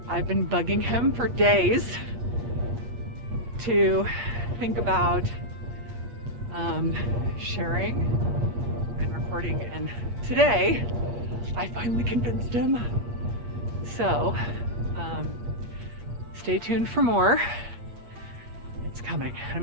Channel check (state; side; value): late; left; 8.5 ms